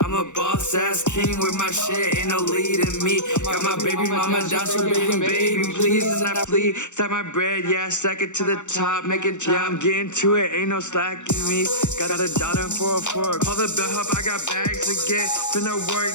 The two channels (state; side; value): late; right; 0.84 ms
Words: I'm a boss ass king with my shit, ain't no leading me. Got my baby mama down, so begging, baby, please, and I flee. Stack my bread, yeah, stack it to the top, make it yeah, I'm getting to it, ain't no slacking me. Got a daughter and 404, call the bellhop, I got bags to get. Finna work,